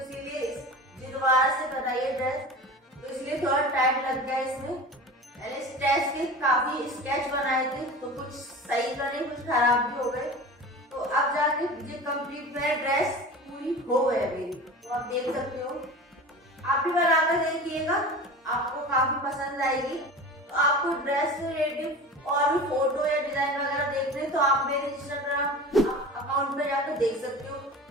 दोबारा से बनाई ड्रेस, तो इसलिए थोड़ा टाइम लग गया इसमें। मैंने स्टेच के काफी स्केच बनाए थे, तो कुछ सही बने, कुछ खराब भी हो गए। तो अब जाके ये कंप्लीट मेरा ड्रेस पूरी हो गई मेरी, तो आप देख सकते हो। आप भी बनाकर देखिएगा, आपको काफी पसंद आएगी। तो आपको ड्रेस से रिलेटेड और भी फोटो या डिजाइन वगैरह देखने, तो आप मेरे इंस्टाग्राम अकाउंट पे जाकर देख सकते हो।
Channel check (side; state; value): both; normal; correlation 0.34